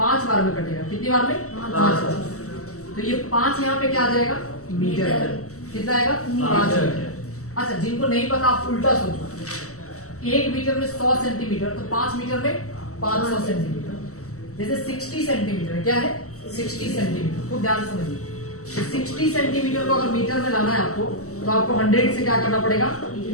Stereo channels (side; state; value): right; late; 0.65 ms